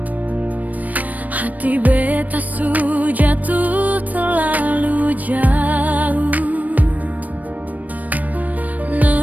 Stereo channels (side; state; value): left; late; 0.076 ms